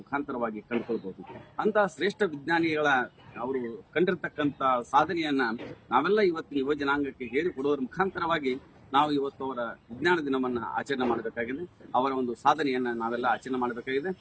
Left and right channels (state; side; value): identical; both; correlation 1.00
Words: ಮುಖಾಂತರವಾಗಿ ಕಂಡುಕೊಳ್ಬಹುದು. ಅಂತ ಶ್ರೇಷ್ಠ ವಿಜ್ಞಾನಿಗಳ ಅವರು ಕಂಡಿರ್ತಕ್ಕಂಥ ಸಾಧನೆಯನ್ನ ನಾವೆಲ್ಲ ಇವತ್ತಿನ ಯುವ ಜನಾಂಗಕ್ಕೆ ಹೇಳಿಕೊಡುವುದರ ಮುಖಾಂತರವಾಗಿ ನಾವು ಇವತ್ತು ಅವರ ವಿಜ್ಞಾನ ದಿನವನ್ನ ಆಚರಣೆ ಮಾಡಬೇಕಾಗಿದೆ. ಅವರ ಒಂದು ಸಾಧನೆಯನ್ನ ನಾವೆಲ್ಲ ಆಚರಣೆ ಮಾಡಬೇಕಾಗಿದೆ.